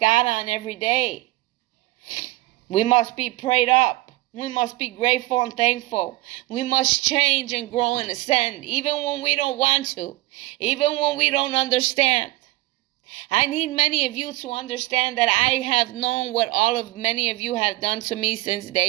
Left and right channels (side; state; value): left; quieter; 19.4 dB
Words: on every day. We must be prayed up. We must be grateful and thankful. We must change and grow and ascend, even when we don't want to, even when we don't understand. I need many of you to understand that I have known what many of you have done to me since